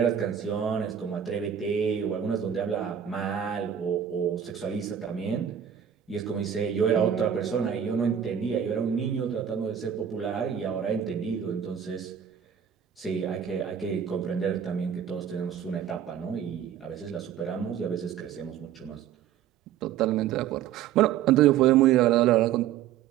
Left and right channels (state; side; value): quieter; left; 9.2 dB